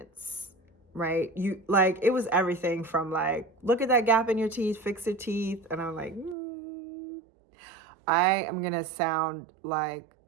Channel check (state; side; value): drops out; left; at 6.4 s